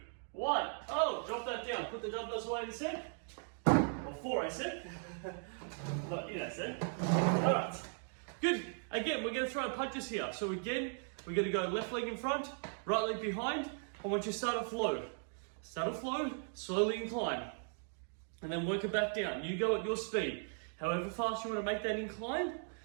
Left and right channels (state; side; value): silent; left; 53 dB below the other